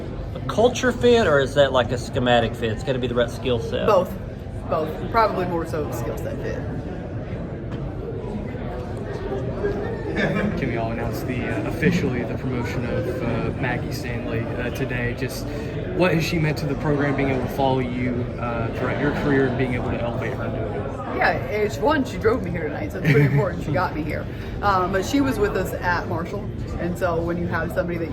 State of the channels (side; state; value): both; identical; correlation 1.00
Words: a culture fit, or is that like a schematic fit? It's got to be the right skill set. Both. Probably more so skill set fit. Kim, y'all announced officially the promotion of Maggie Stanley today. Just what has she meant to the program, being able to follow you throughout your career and being able to elevate her into it? Yeah, she drove me here tonight, so it's pretty important she got me here. But she was with us at Marshall, and so when you have somebody that